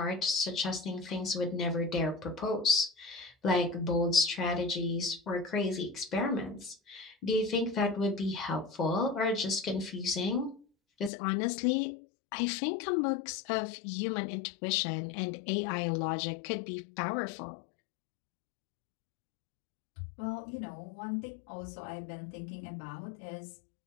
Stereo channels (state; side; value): drops out; right; at 11.1 s